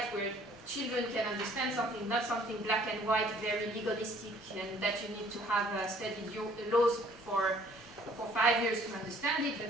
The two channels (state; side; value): normal; both; correlation 0.58